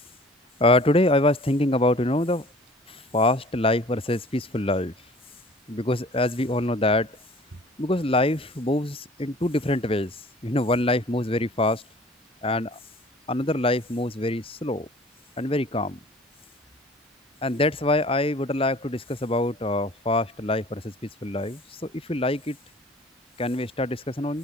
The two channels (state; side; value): normal; both; correlation 0.48